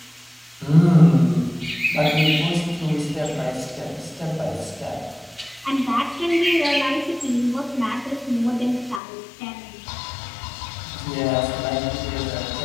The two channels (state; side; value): drops out; right; at 9.0 s